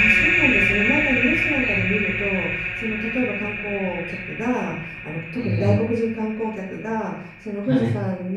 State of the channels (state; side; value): identical; both; correlation 1.00